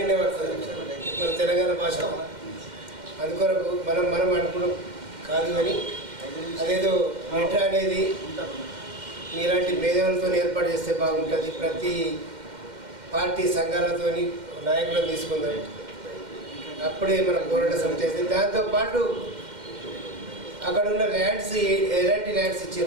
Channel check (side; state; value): left; late; 2.1 ms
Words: పడుతుంది, మన తెలంగాణ భాష. అందుకొరకు మనం అనుకున్నాం కాదు. కానీ అదేదో మెట్రో అనేది మీలాంటి మేధావులతో ఏర్పాటు చేస్తే బాగుంటుంది. ప్రతి పార్టీ సంఘాలతో నాయకులను తీసుకుందాం. అప్పుడే మన పోరాట సమితి చేస్తే దాంతోపాటు అక్కడ ఉన్న ల్యాండ్స్ ఎలాంటి ల్యాండ్స్